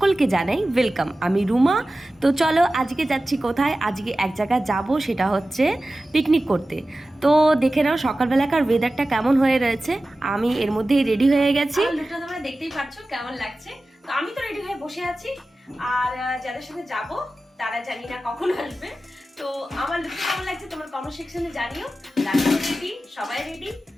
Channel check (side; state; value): both; normal; correlation 0.95